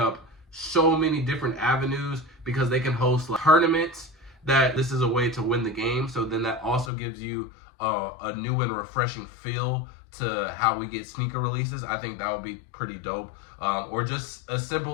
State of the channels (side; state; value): right; drops out; at 6.9 s